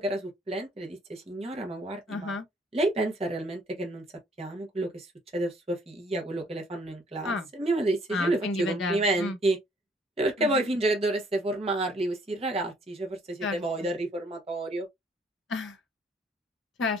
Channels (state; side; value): normal; both; correlation 0.63